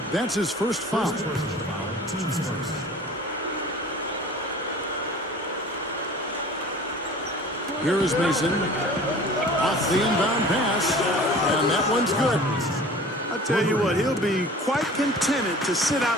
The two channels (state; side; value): normal; both; correlation 0.43